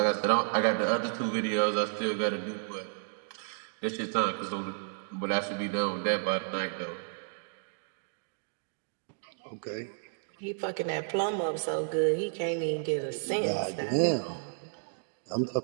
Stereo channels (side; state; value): left; silent; digital silence